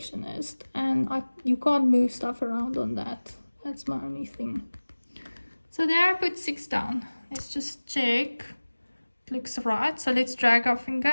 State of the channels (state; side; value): inverted; both; correlation -1.00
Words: And you can't move stuff around on that. That's my only thing. So there I put 6 down. Let's just check. It looks right. So let's drag our